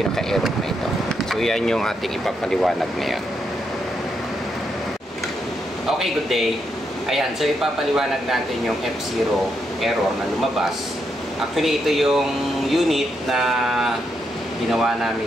na ito. So yan yung ating ipapaliwanag ngayon. Okay, good day. Ayan, so ipapaliwanag natin yung F0 error na lumabas. Actually, ito yung unit na ginawa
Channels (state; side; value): normal; both; correlation 0.80